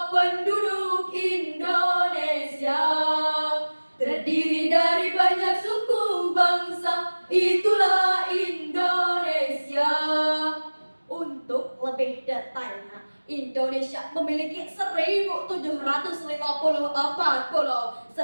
penduduk Indonesia, terdiri dari banyak suku bangsa, itulah Indonesia. Untuk lebih detailnya, Indonesia memiliki 1.754 pulau,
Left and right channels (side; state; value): both; inverted; correlation -1.00